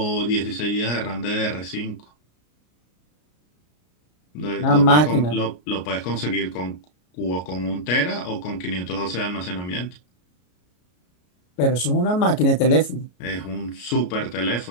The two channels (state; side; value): late; right; 33 ms